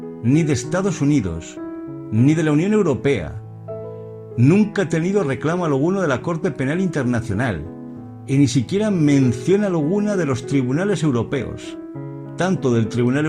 ni de Estados Unidos, ni de la Unión Europea. Nunca ha tenido reclamo alguno de la Corte Penal Internacional y ni siquiera mención alguna de los tribunales europeos, tanto del Tribunal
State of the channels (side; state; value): both; identical; correlation 1.00